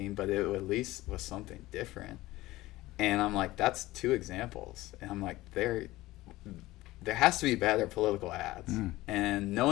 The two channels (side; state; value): right; quieter; 18.0 dB